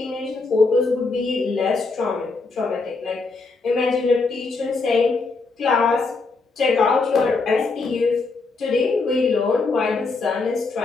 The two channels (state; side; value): quieter; right; 3.9 dB